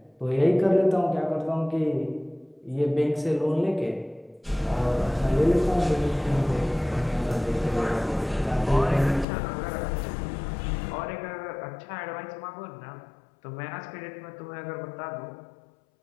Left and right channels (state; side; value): drops out; right; at 9.2 s